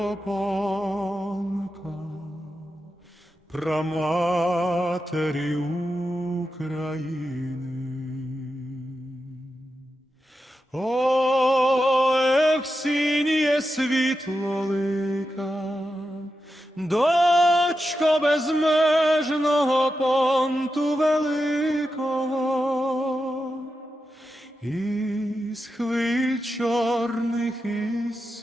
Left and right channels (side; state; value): both; normal; correlation 0.89